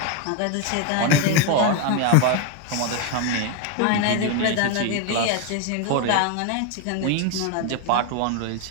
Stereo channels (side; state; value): both; different; correlation 0.02